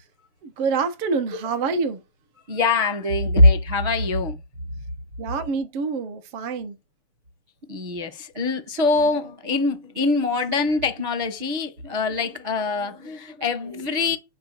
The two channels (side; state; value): left; late; 6.8 ms